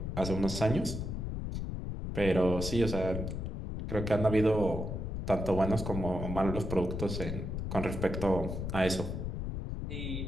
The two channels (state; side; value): noise; left; rumble, 4 dB below the sound